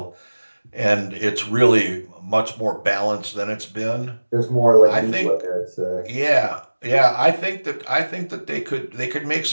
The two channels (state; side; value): inverted; both; correlation -1.00